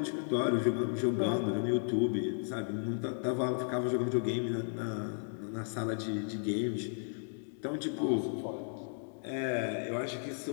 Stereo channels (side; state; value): right; silent; digital silence